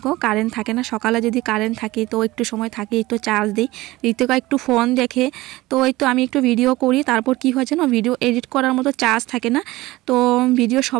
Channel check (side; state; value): left; quieter; 18.9 dB